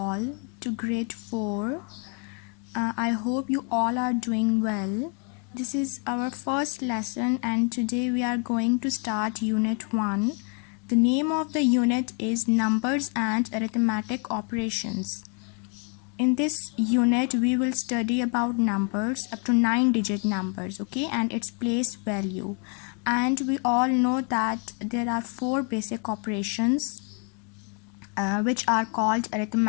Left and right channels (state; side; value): quieter; right; 38.0 dB